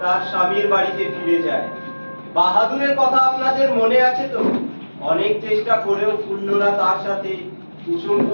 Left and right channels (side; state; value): both; inverted; correlation -1.00